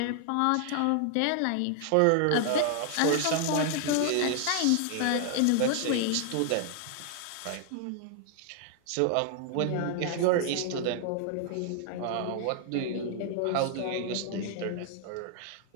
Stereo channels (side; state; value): both; different; correlation 0.00